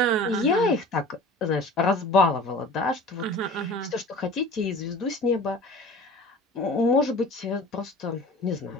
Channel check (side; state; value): both; normal; correlation 0.42